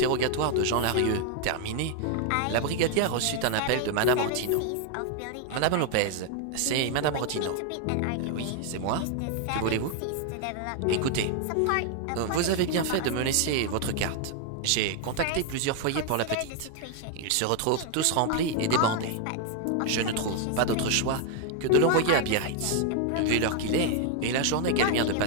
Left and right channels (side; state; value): both; different; correlation 0.00